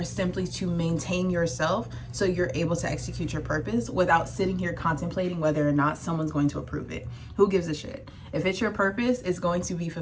simply to maintain yourself so you're able to execute your purpose without sitting here contemplating whether or not someone's going to approve it. Who gives a shit? If it's your purpose, it's going to be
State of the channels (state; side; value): identical; both; correlation 1.00